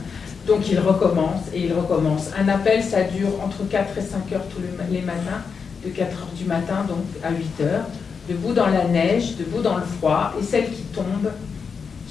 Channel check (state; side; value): quieter; right; 5.8 dB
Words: Donc ils recommencent et ils recommencent. Un appel, ça dure entre 4 et 5 heures tous les matins, de 4 heures du matin donc à 8 heures, debout dans la neige, debout dans le froid, et celles qui tombent